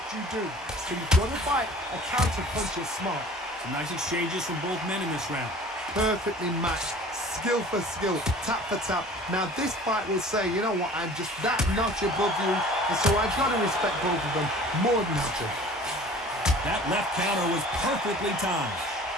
you do. So you've got to fight a counter puncher smart. Some nice exchanges from both men in this round. Perfectly matched. Skill for skill, tap for tap. Now this fight will say, you know what, I'm just that notch above you, and so I've got to respect both of them more than nothing. That left counter was perfectly timed.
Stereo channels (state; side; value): normal; both; correlation 0.46